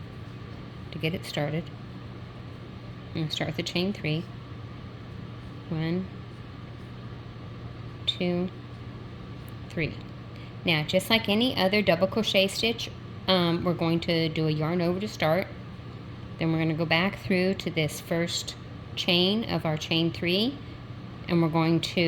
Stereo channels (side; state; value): both; identical; correlation 1.00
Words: to get it started. I'm going to start with a chain 3. 1, 2, 3. Now, just like any other double crochet stitch, we're going to do a yarn over to start. Then we're going to go back through to this first chain of our chain 3, and we're going